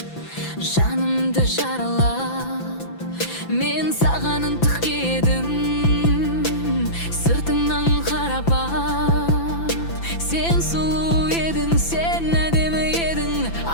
Жанымды жаралап, мен саған ынтық едім. Сыртыңнан қарап бақ, сен сұлу едің, сен әдемі едің.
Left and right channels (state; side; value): late; right; 5.9 ms